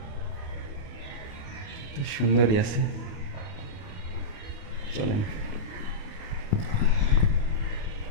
তো সুন্দরই আছে, চলেন।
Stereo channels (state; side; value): late; right; 28 ms